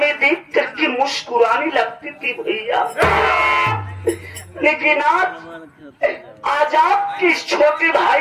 देख करके मुस्कुराने लगती थी भैया, लेकिन आज आपके इस छोटे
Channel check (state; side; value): identical; both; correlation 1.00